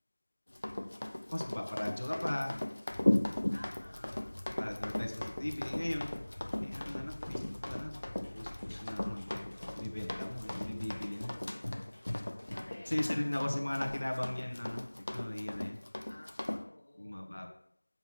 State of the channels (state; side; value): inverted; both; correlation -1.00